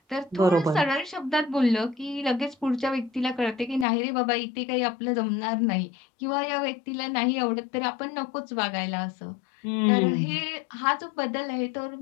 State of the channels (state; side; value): drops out; right; at 3.9 s